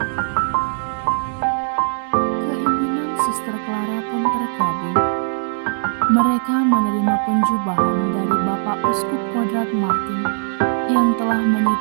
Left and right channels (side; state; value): left; silent; 56 dB below the other